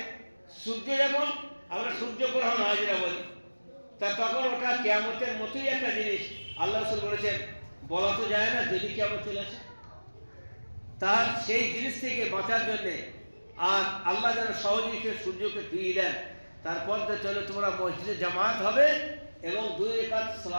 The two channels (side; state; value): both; inverted; correlation -1.00